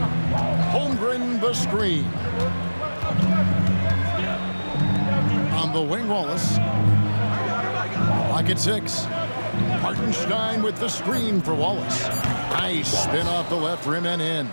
Holmgren the screen. On the wing, Wallace. Lock at 6. Hartenstein with the screen for Wallace. Nice spin off the left rim and in.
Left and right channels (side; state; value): both; inverted; correlation -1.00